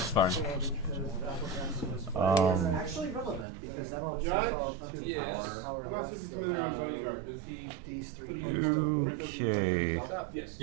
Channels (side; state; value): left; drops out; at 3.5 s